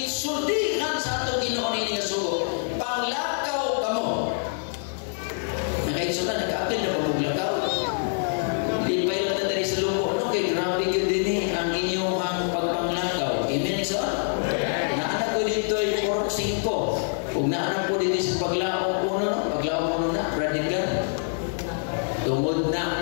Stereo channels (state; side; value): silent; right; digital silence